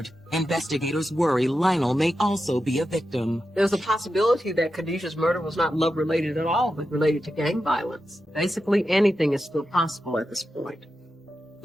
investigators worry Lionel may also be a victim. There's a possibility that Khadijah's murder was not love-related at all, but related to gang violence. Basically, anything is still possible at this point.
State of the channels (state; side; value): normal; both; correlation 0.90